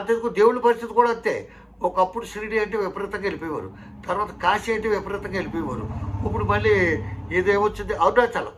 దేవుడి పరిస్థితి కూడా అంతే. ఒకప్పుడు షిరిడి అంటే విపరీతంగా వెళ్ళిపోయేవారు, తర్వాత కాశీ అంటే విపరీతంగా వెళ్ళిపోయేవారు. ఇప్పుడు మళ్ళీ ఇదేమొచ్చింది, అరుణాచలం,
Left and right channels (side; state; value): both; identical; correlation 1.00